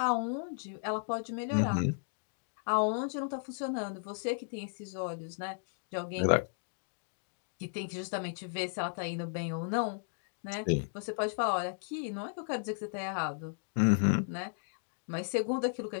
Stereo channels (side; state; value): right; silent; digital silence